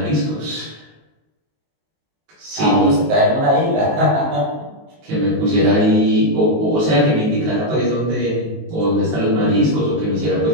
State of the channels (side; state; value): left; late; 19 ms